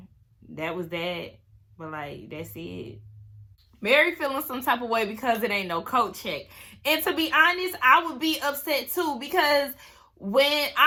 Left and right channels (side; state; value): both; identical; correlation 1.00